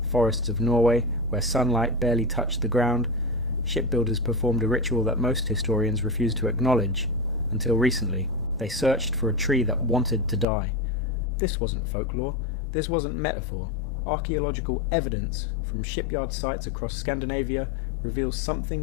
forests of Norway, where sunlight barely touched the ground. Shipbuilders performed a ritual that most historians refuse to acknowledge. Until recently, they searched for a tree that wanted to die. This wasn't folklore, this wasn't metaphor. Archaeological evidence from shipyard sites across Scandinavia reveals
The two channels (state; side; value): drops out; right; at 10.5 s